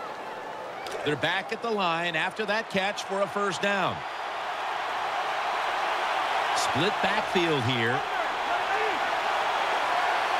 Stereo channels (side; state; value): both; identical; correlation 1.00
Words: They're back at the line after that catch for a first down. Split backfield here.